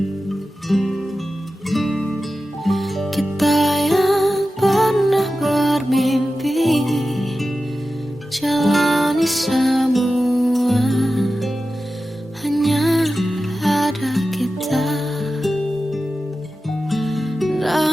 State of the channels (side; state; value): both; normal; correlation 0.93